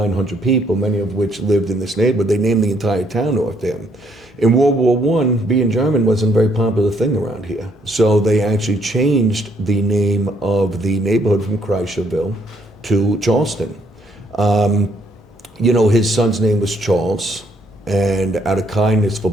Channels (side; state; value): both; normal; correlation 0.69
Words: people, many of which lived in this neighborhood. They named the entire town after him. In World War I, being German wasn't a very popular thing around here. So they actually changed the name of the neighborhood from Kreischerville to Charleston. His son's name was Charles, and out of kindness for